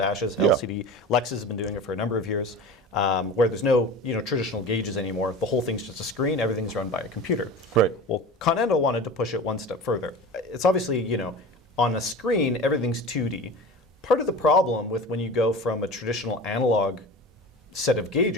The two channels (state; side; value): normal; both; correlation 0.34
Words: Yeah. LCD. Lexus has been doing it for a number of years, where there's no traditional gauges anymore. The whole thing's just a screen. Everything's run by a computer. Right. Well, Continental wanted to push it one step further. It's obviously, on a screen, everything's 2D. Part of the problem with when you go from a traditional analog set of